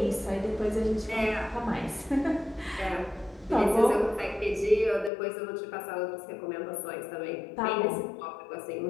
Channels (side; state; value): right; drops out; at 5.1 s